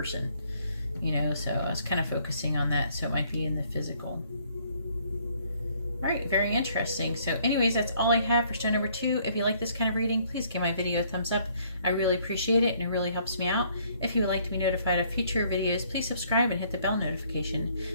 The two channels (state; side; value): inverted; both; correlation -0.64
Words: you know, so I was kind of focusing on that, so it might be in the physical. All right, very interesting. So anyways, that's all I have for stone number 2. If you like this kind of reading, please give my video a thumbs up. I really appreciate it, and it really helps me out. If you would like to be notified of future videos, please subscribe and hit the bell notification.